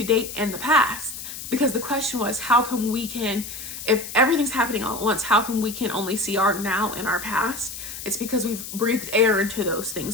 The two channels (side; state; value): left; noise; hiss, 10 dB below the sound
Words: date and the past, because the question was, how come we can, if everything's happening all at once, how come we can only see our now and our past? It's because we've breathed air into those